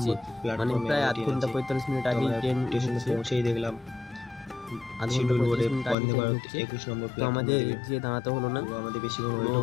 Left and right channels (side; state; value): right; drops out; at 6.0 s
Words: প্ল্যাটফর্মে, মানে প্রায় আধ ঘন্টা 45 মিনিট আগেই ট্রেন পৌঁছেই দেখলাম। আধ ঘন্টা 45 মিনিট আগে ট্রেন ঢুকছে। 21 নম্বর তো আমাদের যে দাঁড়াতে হলো না, আমাদের বেশি ওয়েট